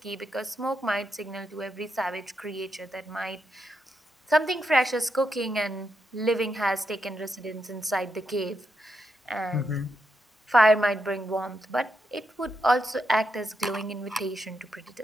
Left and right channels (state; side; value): normal; both; correlation 0.83